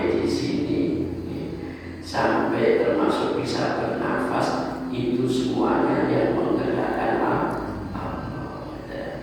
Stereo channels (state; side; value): identical; both; correlation 1.00